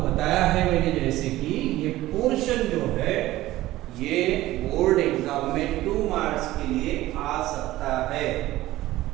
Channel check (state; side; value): quieter; left; 16.3 dB